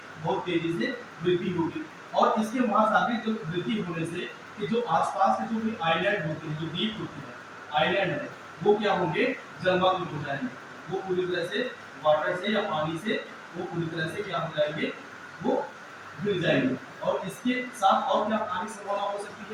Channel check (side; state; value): both; identical; correlation 1.00